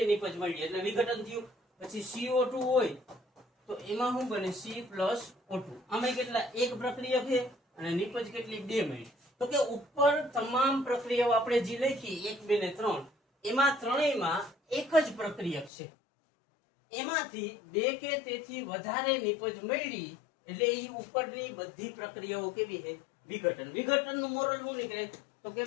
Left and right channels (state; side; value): drops out; right; at 15.7 s